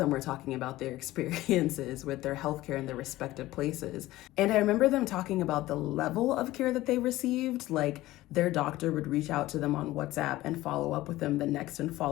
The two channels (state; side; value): quieter; right; 16.9 dB